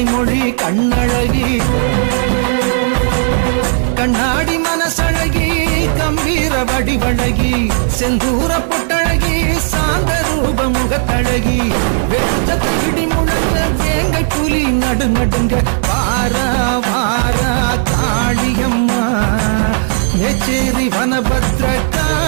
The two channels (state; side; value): silent; left; digital silence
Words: மொழி கண்ணழகி கண்ணாடி மனசழகி கம்பீர வடிவழகி செந்தூர பொட்டழகி சாந்த ரூப முகத்தழகி வெச்சத்தை இடி முழங்க வேங்கை புலி நடுநடுங்க வாரா வாரா காளியம்மா மேச்சேரி வனபத்ர